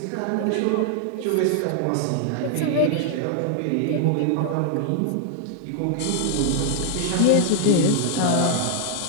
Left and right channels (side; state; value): both; different; correlation 0.00